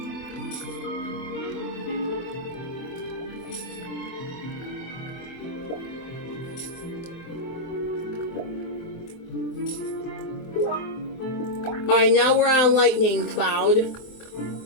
Alright, now we're on lightning cloud.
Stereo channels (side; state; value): right; late; 24 ms